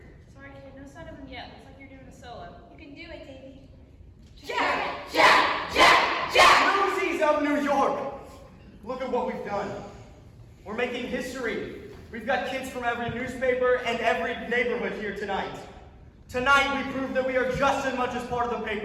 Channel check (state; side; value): identical; both; correlation 1.00